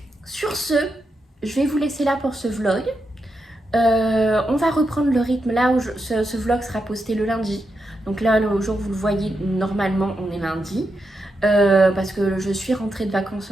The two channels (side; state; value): both; normal; correlation 0.85